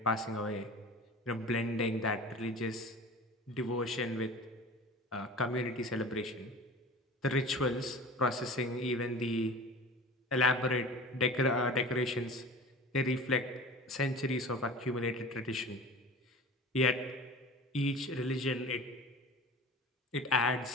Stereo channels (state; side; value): normal; both; correlation 0.38